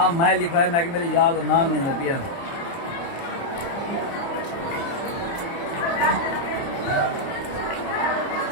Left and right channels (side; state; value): right; late; 30 ms